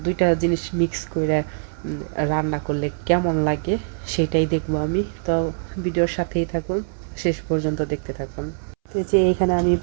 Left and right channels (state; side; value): silent; left; 63 dB below the other